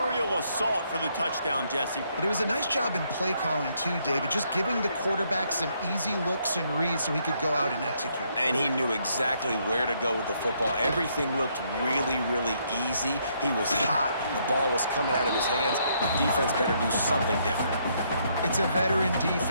assault for the touchdown, Jesse. But it was a nice job in play calling too, David, just giving the quarterback some easy looks and reads so he could go out and execute. And he knew exactly where to go with the football. Everything looked really, really easy. He was hot. The ball was coming out of his hands. The defense better do something different. It's a veteran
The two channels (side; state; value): both; inverted; correlation -0.72